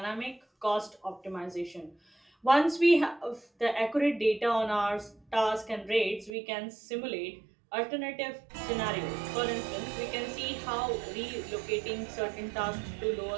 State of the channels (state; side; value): drops out; left; at 6.4 s